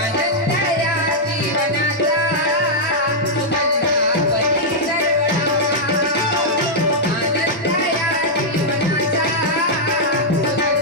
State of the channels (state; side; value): normal; both; correlation -0.06